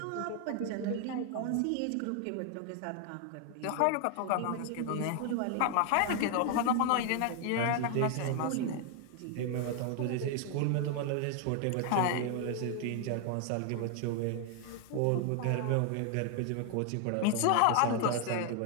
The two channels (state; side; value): different; both; correlation 0.00